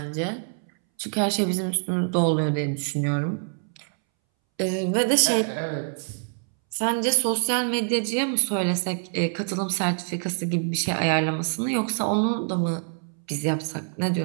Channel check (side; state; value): left; silent; 61 dB below the other